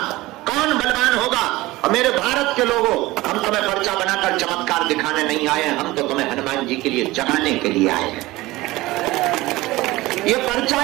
कौन बलवान होगा। और मेरे भारत के लोगों, हम तुम्हें पर्चा बनाकर चमत्कार दिखाने नहीं आए हैं, हम तो तुम्हें हनुमान जी के लिए जगाने के लिए आए हैं। ये पर्चा,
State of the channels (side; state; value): left; quieter; 19.0 dB